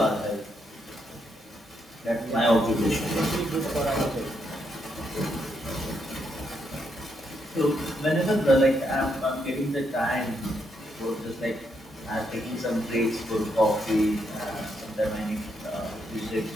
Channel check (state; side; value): normal; both; correlation 0.78